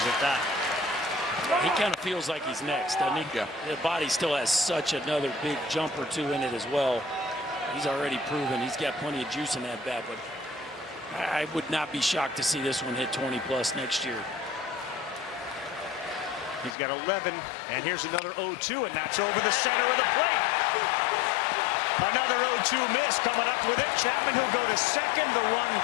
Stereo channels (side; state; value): right; drops out; at 16.8 s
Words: at that. He kind of feels like he's next, doesn't he? Yeah. The body still has such another big jump or two in it as well. He's already proven he's got plenty of juice in that bat, but I would not be shocked to see this one hit 20 plus next year. He's got 11, and here's another 0-2, and that's over the center of the plate. Another 0-2 miss coming up with it. Chapman who'll go to second. The run